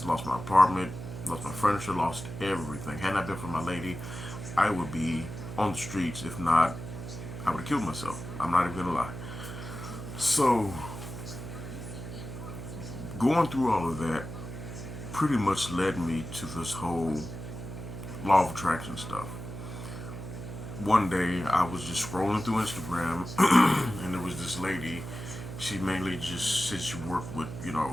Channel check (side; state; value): right; noise; hum, 9 dB below the sound